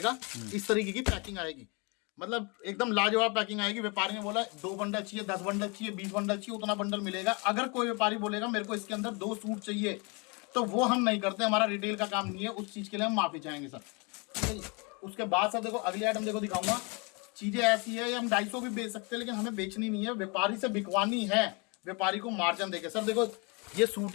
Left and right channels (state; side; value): quieter; right; 31.0 dB